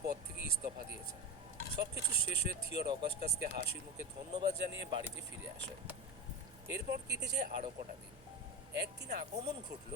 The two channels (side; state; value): both; normal; correlation 0.23